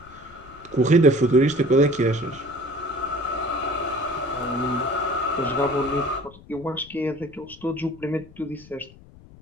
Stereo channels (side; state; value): left; noise; rumble, 22 dB below the sound